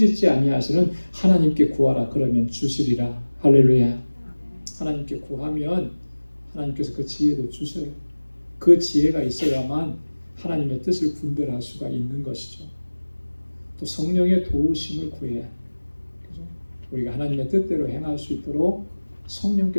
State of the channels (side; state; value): both; inverted; correlation -1.00